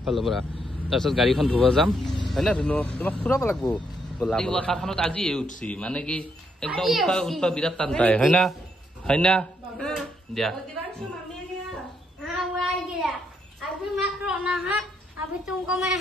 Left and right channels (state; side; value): normal; both; correlation 0.76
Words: পৰা তাৰপিছত গাড়ীখন ধুব যাম হয় না ধুনু তোমাক ফুৰাব লাগিব ব'লা ৱাকাৰখনত আজি উঠছি মানে কি একদম উঠা বিৰাট টান পায় হয় না দিয়া